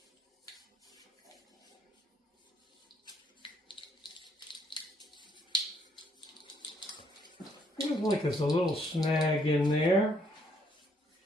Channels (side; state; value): both; normal; correlation 0.70